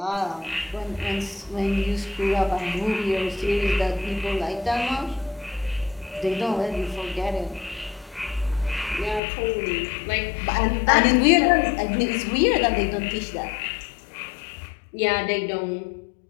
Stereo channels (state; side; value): drops out; right; at 9.2 s